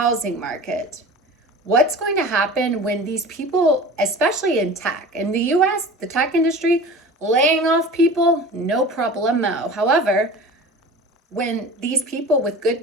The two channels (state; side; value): normal; both; correlation 0.37